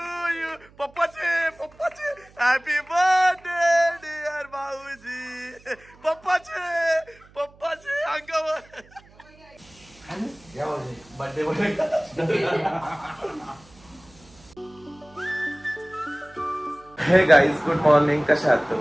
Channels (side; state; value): right; noise; hum, 26 dB below the sound